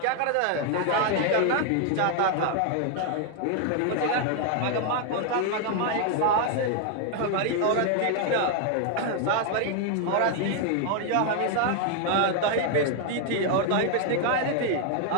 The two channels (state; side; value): different; both; correlation 0.00